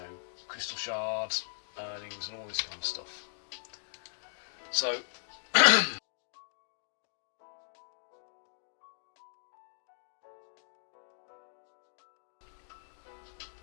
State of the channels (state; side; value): silent; right; digital silence